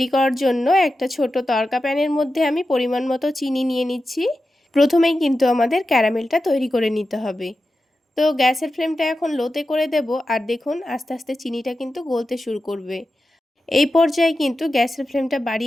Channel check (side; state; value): both; normal; correlation 0.92